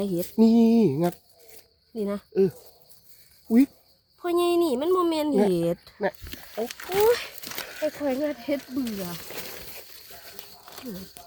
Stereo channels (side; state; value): both; identical; correlation 1.00